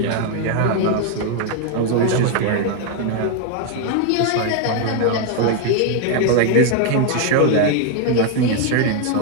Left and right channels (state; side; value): different; both; correlation 0.01